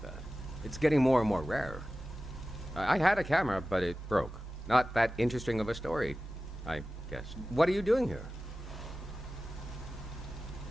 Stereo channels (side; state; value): both; normal; correlation 0.95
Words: that. It's getting more and more rare. I had a camera, but it broke. Not that interesting of a story, I guess. What are you doing here?